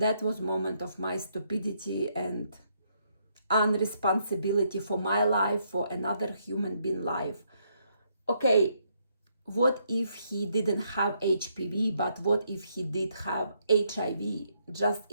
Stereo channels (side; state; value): both; inverted; correlation -0.74